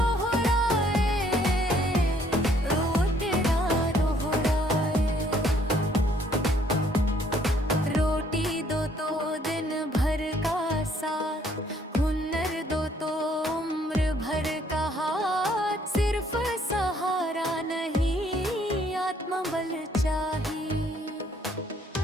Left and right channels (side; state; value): both; normal; correlation 0.64